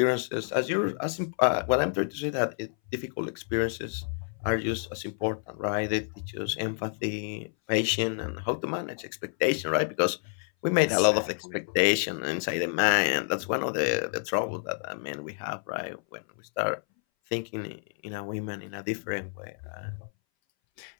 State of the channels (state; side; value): silent; right; 59 dB below the other